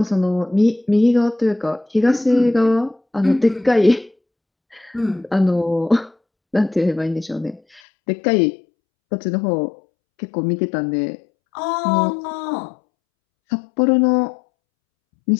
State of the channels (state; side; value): drops out; right; at 7.8 s